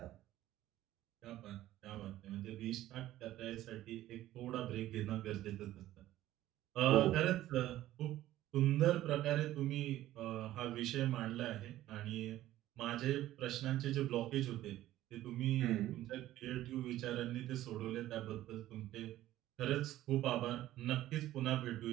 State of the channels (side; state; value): left; quieter; 14.4 dB